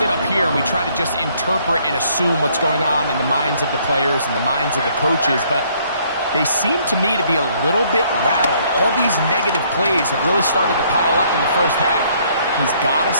up here and we try to just interpret and assume what's going on in the minds of the players and the minds of the coaches, but they seem to me to be a little bit rattled. All these negative plays have really started to pile up in the first half. He's got to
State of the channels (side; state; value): both; inverted; correlation -0.65